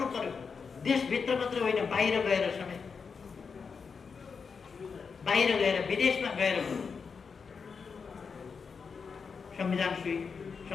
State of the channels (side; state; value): right; quieter; 5.6 dB